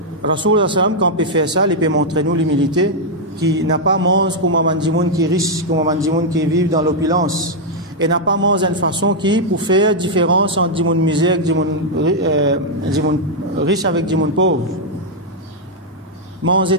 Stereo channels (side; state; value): both; normal; correlation -0.02